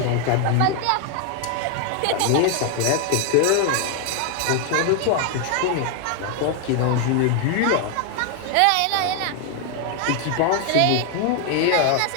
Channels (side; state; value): both; different; correlation 0.01